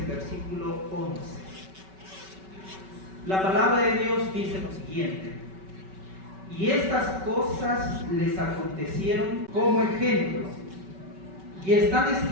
versículo 11. La palabra de Dios dice lo siguiente: y estas cosas les acontecieron como ejemplo y están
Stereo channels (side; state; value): left; late; 5.3 ms